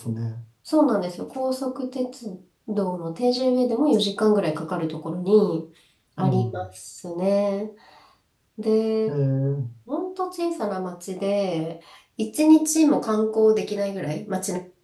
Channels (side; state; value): both; identical; correlation 1.00